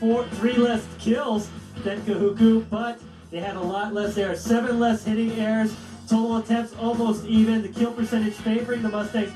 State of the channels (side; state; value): both; identical; correlation 1.00